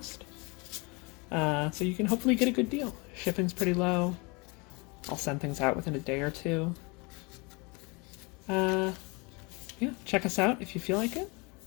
So you can hopefully get a good deal. Shipping's pretty low. I'll send things out within a day or two. Yeah, check us out if you feel like it.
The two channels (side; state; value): right; quieter; 28.7 dB